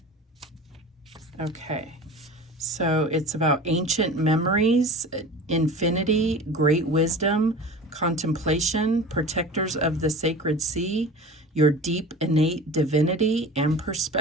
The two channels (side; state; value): both; normal; correlation 0.36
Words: Okay. So it's about ancient memories, infinity, great wisdom, contemplation, protectors of the sacred sea, your deep innate divinity, and